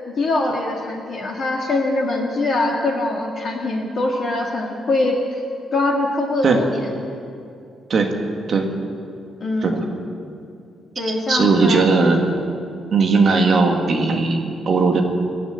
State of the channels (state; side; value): normal; both; correlation 0.76